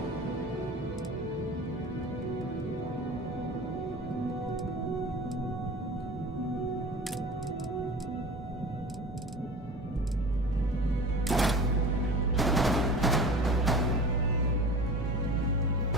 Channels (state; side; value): normal; both; correlation 0.37